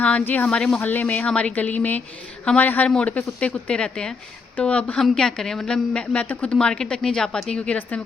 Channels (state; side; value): quieter; right; 4.7 dB